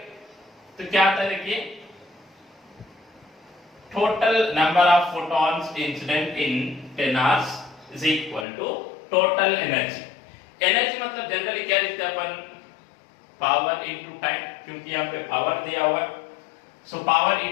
तो क्या आता है, देखिए total number of photons incident in 10 hours is equal to total energy. Energy मतलब जनरली क्या लिखते हैं अपन, पावर इनटू टाइम, क्योंकि यहां पे पावर दिया हुआ है। So power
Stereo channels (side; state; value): right; drops out; at 8.5 s